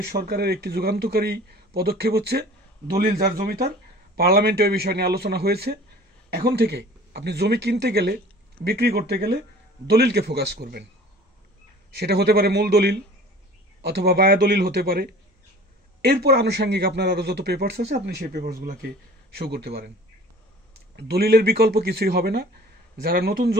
সরকারের একটি যুগান্তকারী পদক্ষেপ হচ্ছে দলিল যার জমি তার। পার্লামেন্টে ওই বিষয় নিয়ে আলোচনা হয়েছে। এখন থেকে আপনি জমি কিনতে গেলে, বিক্রি করতে গেলে দলিলকে ফোকাস করবেন। সেটা হতে পারে মূল দলিল অথবা বায়া দলিল হতে পারে। এরপর আনুষঙ্গিক আপনার আরও যত পেপারস আছে, আপনি সেই পেপারসগুলোকে শো করতে পারেন। দলিলের বিকল্প কিছুই হবে না। যারা নতুন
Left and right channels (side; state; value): both; normal; correlation 0.46